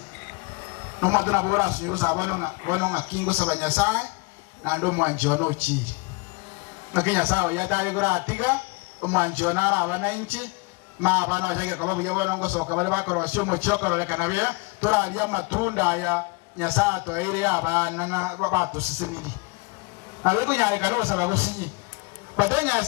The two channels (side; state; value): right; quieter; 27.0 dB